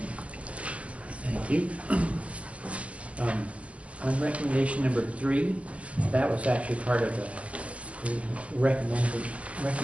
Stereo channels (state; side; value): late; left; 0.063 ms